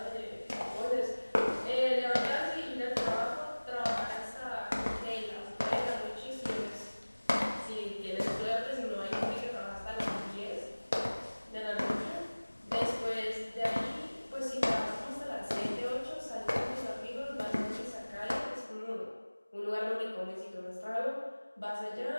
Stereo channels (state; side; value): inverted; both; correlation -1.00